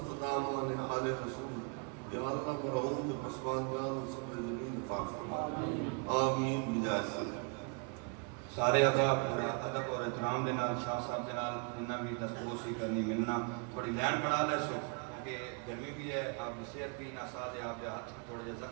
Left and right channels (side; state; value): left; quieter; 36.0 dB